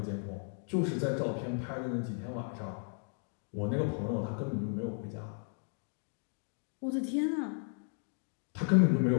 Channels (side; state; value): right; silent; 55 dB below the other